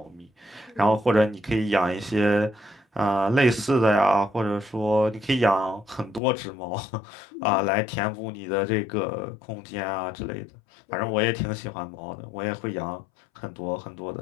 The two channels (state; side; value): drops out; right; at 6.2 s